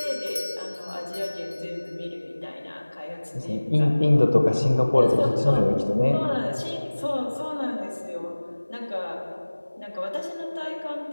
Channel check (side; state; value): both; inverted; correlation -1.00